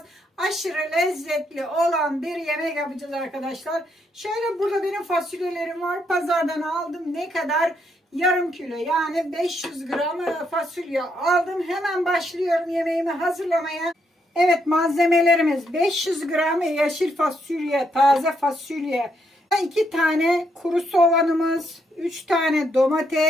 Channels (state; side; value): normal; both; correlation 0.76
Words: Aşırı lezzetli olan bir yemek yapacağız arkadaşlar. Şöyle burada benim fasulyelerim var. Pazardan aldım. Ne kadar? Yarım kilo, yani 500 gram fasulye aldım. Hemen başlıyorum yemeğimi hazırlamaya. Evet, malzemelerimiz 500 gram yeşil fasulye, taze fasulye, 2 tane kuru soğanımız, 3 tane